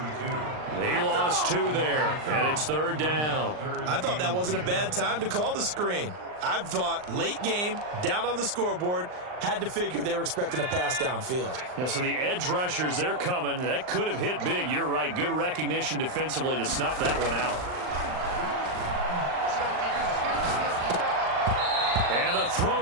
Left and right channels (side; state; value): left; late; 39 ms